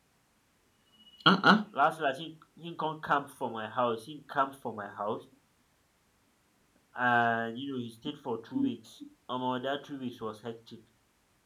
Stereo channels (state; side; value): identical; both; correlation 1.00